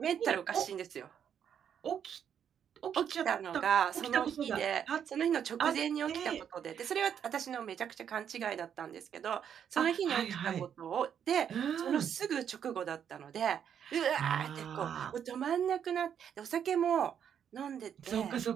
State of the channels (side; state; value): left; quieter; 8.5 dB